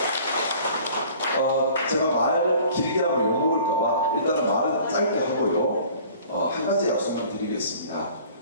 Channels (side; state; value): both; inverted; correlation -0.49